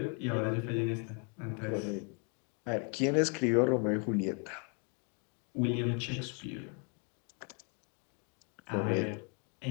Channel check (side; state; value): right; quieter; 37.9 dB